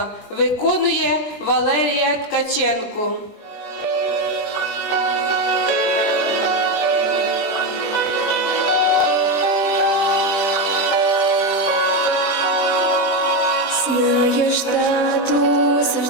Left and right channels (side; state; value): right; late; 20 ms